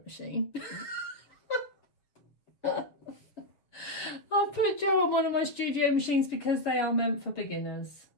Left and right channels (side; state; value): right; late; 7.0 ms